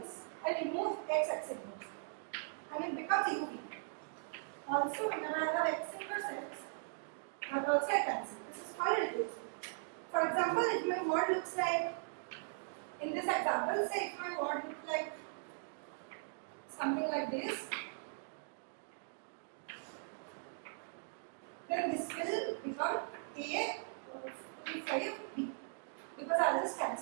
I remove X inverse and it becomes UV. Also when I have X inverse X, that also I cancel. This is called reduced. For example, if my word looks like, in this example, say if my word looks like something like this, then this will become A to 5 B, because I'll just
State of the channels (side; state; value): left; silent; digital silence